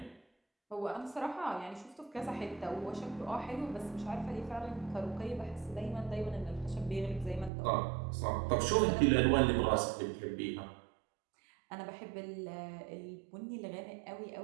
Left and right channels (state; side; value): drops out; left; at 7.5 s